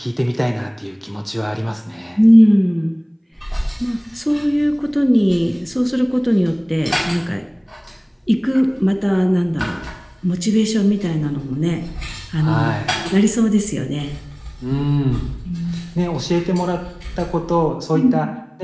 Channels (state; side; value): identical; both; correlation 1.00